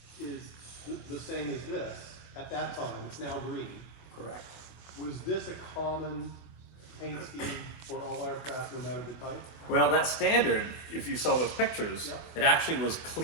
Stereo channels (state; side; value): late; right; 24 ms